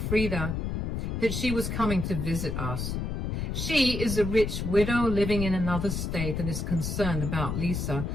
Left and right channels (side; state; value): left; noise; rumble, 2 dB below the sound